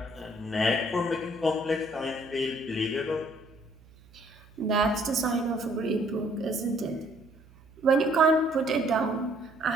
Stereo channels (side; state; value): right; noise; hum, 25 dB below the sound